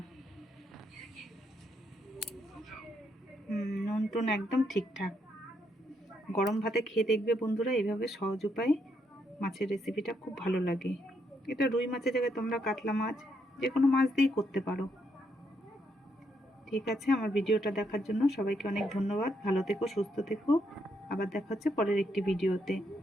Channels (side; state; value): both; normal; correlation 0.77